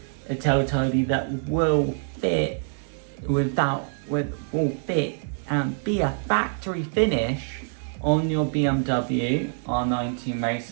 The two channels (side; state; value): left; silent; 61 dB below the other